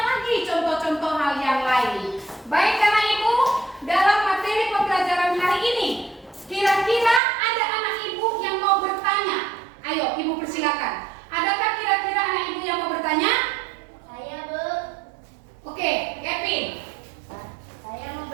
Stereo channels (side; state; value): left; drops out; at 7.2 s